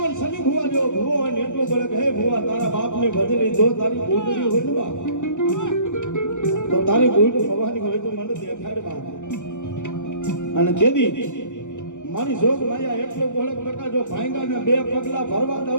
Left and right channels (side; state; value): right; late; 0.85 ms